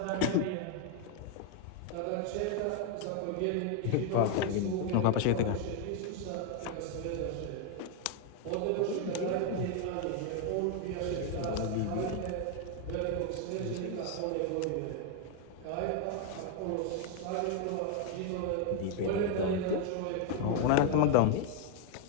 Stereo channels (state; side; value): different; both; correlation 0.00